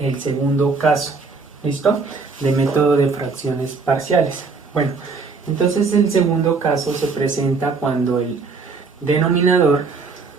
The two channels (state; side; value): quieter; left; 4.5 dB